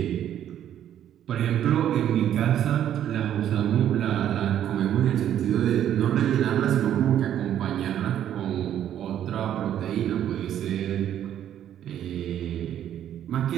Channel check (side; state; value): left; quieter; 10.7 dB